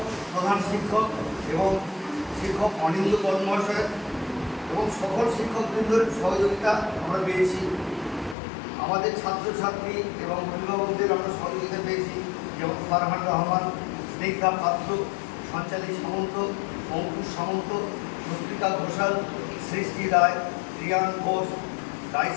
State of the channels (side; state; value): right; drops out; at 8.3 s